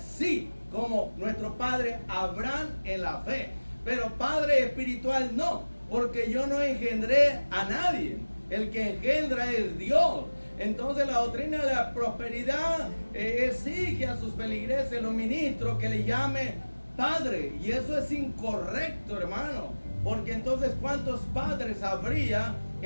como nuestro padre Abraham en la fe. Pero Padre espiritual no, porque yo no engendré a nadie. El que engendra es Dios. Entonces la doctrina de la prosperidad exige a sus feligreses, los ministros, que le llame Padre. Y eso es incorrecto, hermano. Porque entonces, ¿cuántos padres habría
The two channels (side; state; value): both; inverted; correlation -1.00